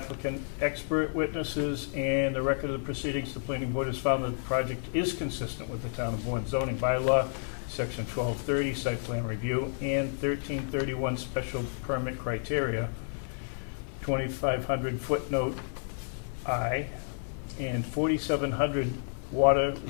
expert witnesses, and the record of the proceedings, the planning board has found that the project is consistent with the town of Bourne zoning bylaw, section 1230, site plan review, and 1331 special permit criteria, 2500 footnote I, and 4700 water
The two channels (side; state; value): right; silent; 57 dB below the other